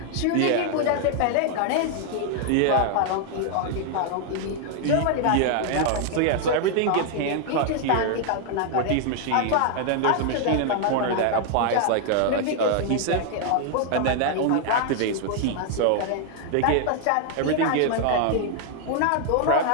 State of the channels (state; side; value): different; both; correlation 0.00